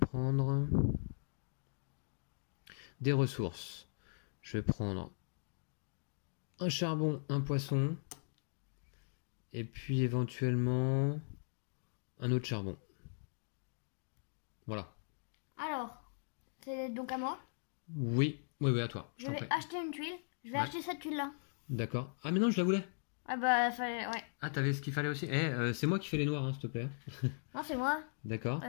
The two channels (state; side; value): silent; right; digital silence